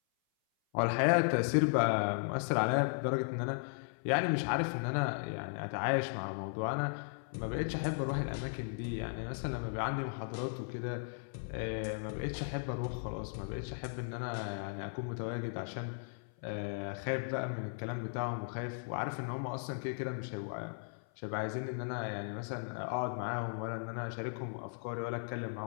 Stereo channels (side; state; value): right; silent; 53 dB below the other